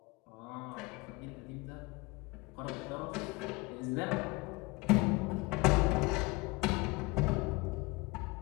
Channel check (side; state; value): right; quieter; 24.6 dB